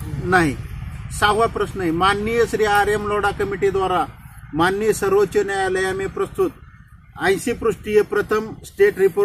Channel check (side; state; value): both; identical; correlation 1.00